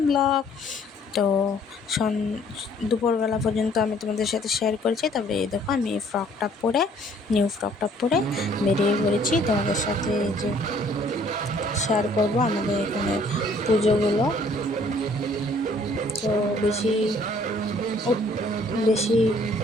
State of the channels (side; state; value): both; normal; correlation 0.59